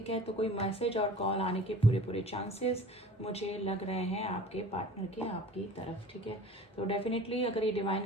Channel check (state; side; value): normal; both; correlation 0.43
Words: है। तो कोई मैसेज और कॉल आने के पूरे चांसेस मुझे लग रहे हैं आपके पार्टनर के आपकी तरफ, ठीक है। तो डेफिनेटली अगर ये